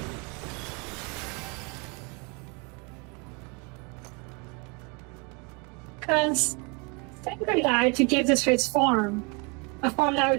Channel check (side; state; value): left; quieter; 31.2 dB